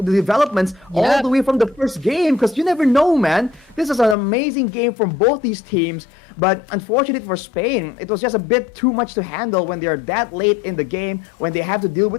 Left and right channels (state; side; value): drops out; right; at 4.2 s